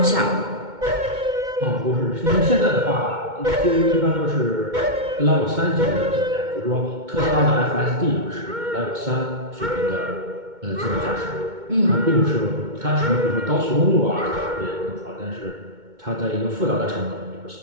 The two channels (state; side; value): late; left; 2.2 ms